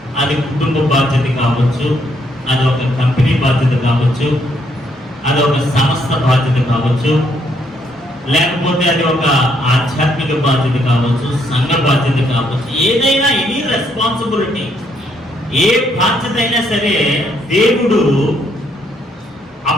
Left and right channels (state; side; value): normal; both; correlation 0.72